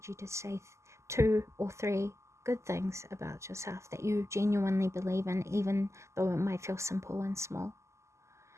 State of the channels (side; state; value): left; late; 0.13 ms